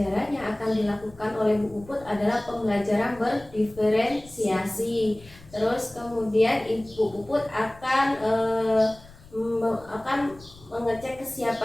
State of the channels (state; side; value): noise; left; rumble, 22 dB below the sound